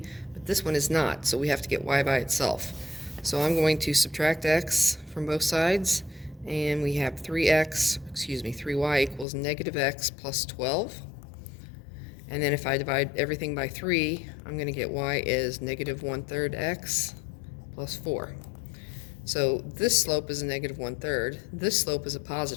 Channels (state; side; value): drops out; right; at 9.2 s